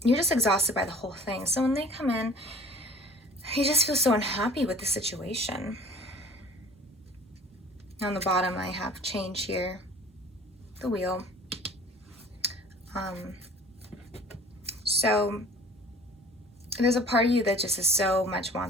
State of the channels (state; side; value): normal; both; correlation 0.47